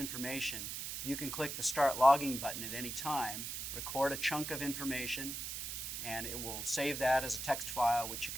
you can click the Start Logging button at any time, record a chunk of information, and it will save that as a text file, which you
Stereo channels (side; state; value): right; noise; hiss, 5 dB below the sound